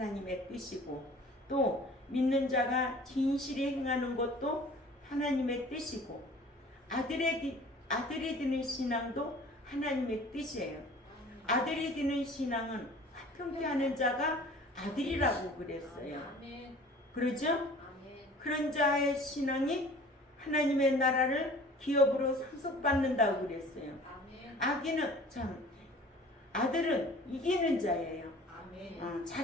뜻이고, 또 믿는 자가 진실히 행하는 것도 하나님의 뜻이고, 아들이 되는 신앙도 하나님의 뜻이에요. 아들이 되는 신앙은 화평케 하는 자가 아들이라고 그랬어요. 그러죠? 그런 자의 신앙이 하나님의 나라를 기업으로 상속받는다고 그랬어요. 아들은 이기는 자예요.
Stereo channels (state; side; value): normal; both; correlation 0.47